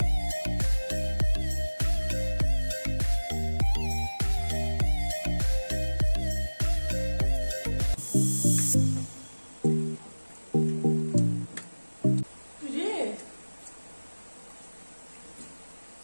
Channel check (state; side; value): inverted; both; correlation -1.00